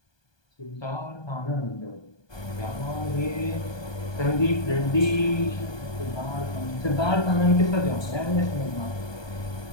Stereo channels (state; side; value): late; right; 1.2 ms